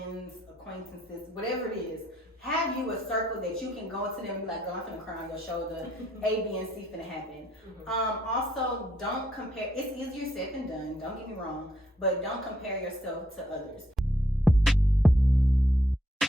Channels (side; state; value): both; normal; correlation 0.72